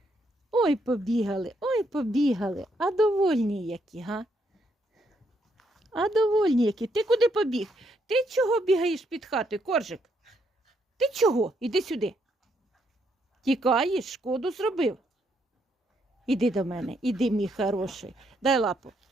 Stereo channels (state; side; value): normal; both; correlation 0.75